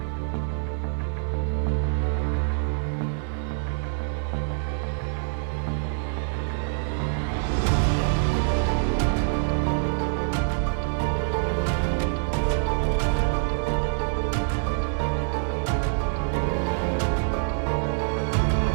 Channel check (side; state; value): left; silent; digital silence